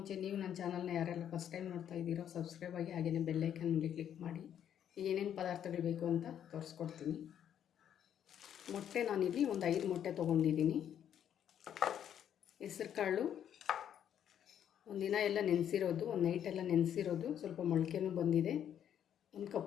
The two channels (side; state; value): right; quieter; 9.6 dB